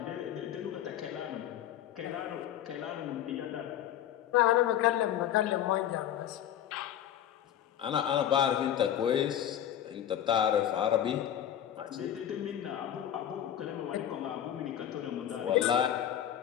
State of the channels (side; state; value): right; quieter; 10.7 dB